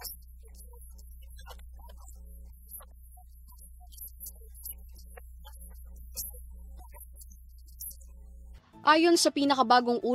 ng Butchoy, Karina at Habagat ayon sa pahayag ng National Disaster Risk Reduction and Management Council o NDRRMC. Ayon sa pinakabagong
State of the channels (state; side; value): identical; both; correlation 1.00